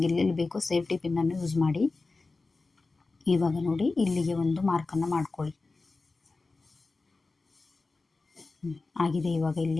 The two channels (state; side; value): quieter; right; 3.7 dB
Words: ಎಲ್ಲೆಲ್ಲಿ ಬೇಕೋ ಸೇಫ್ಟಿ ಪಿನ್ನನ್ನು ಯೂಸ್ ಮಾಡಿ. ಇವಾಗ ನೋಡಿ, ಇಲ್ಲಿಗೆ ಒಂದು ಮಾರ್ಕನ್ನು ಮಾಡ್ಕೊಳ್ಳಿ. ಆಗಿದೆ ಇವಾಗ